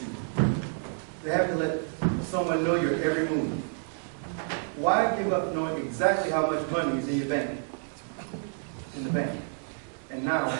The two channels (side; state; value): left; silent; 59 dB below the other